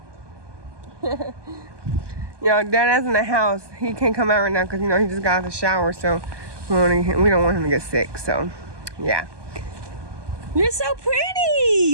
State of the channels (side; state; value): left; late; 1.2 ms